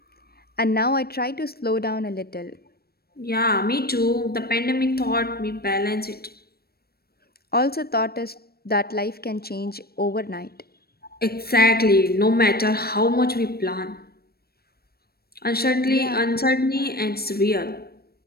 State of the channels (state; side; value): late; right; 0.45 ms